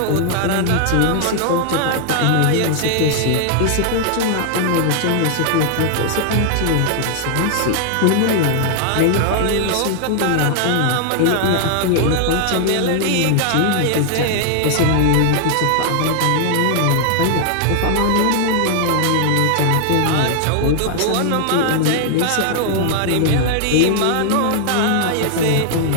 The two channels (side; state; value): both; different; correlation 0.00